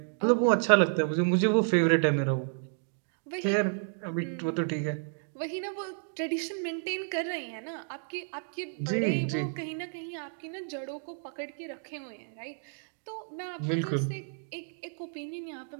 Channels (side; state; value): left; silent; digital silence